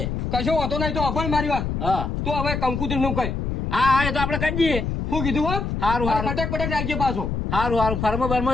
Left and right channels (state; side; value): noise; left; rumble, 3 dB below the sound